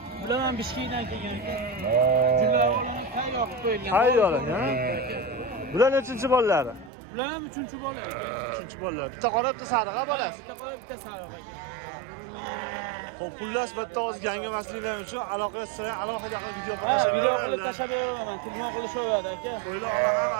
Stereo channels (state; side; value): drops out; left; at 6.9 s